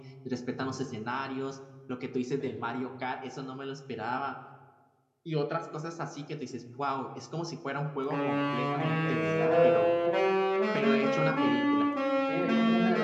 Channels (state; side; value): identical; both; correlation 1.00